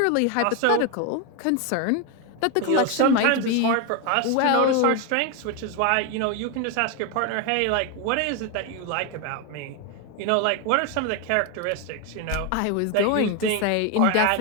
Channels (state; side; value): different; both; correlation 0.01